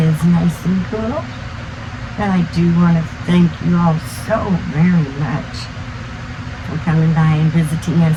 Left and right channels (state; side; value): identical; both; correlation 1.00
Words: is nice and cool. And I do want to thank you all so very much for coming by and visiting us